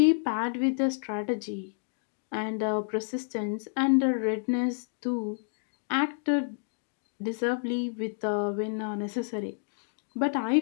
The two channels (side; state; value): right; silent; digital silence